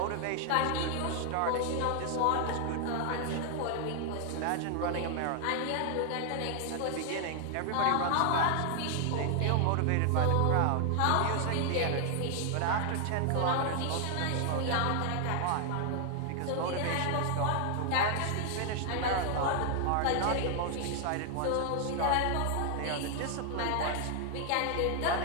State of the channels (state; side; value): different; both; correlation 0.00